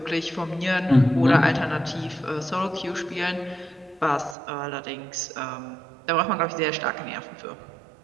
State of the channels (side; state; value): left; drops out; at 4.4 s